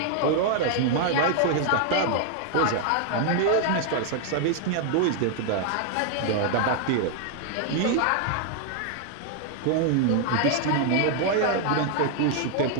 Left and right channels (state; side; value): different; both; correlation 0.00